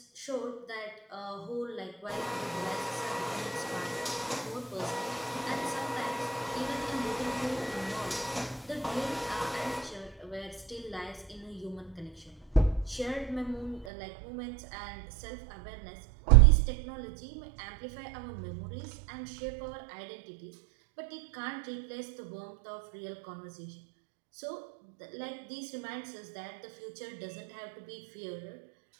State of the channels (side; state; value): left; drops out; at 13.9 s